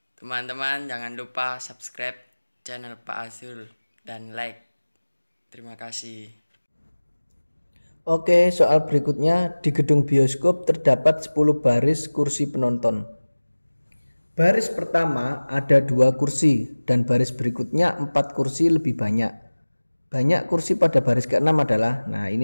Teman-teman jangan lupa subscribe channel Pak Azrul dan like. Terima kasih. Oke, soal berikutnya. Di gedung bioskop terdapat 10 baris kursi penonton. Baris pertama ada 2 kursi dan baris berikutnya 4 kursi lebih banyak. Banyak kursi pada baris ke-6 adalah, nah ini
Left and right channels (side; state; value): both; inverted; correlation -1.00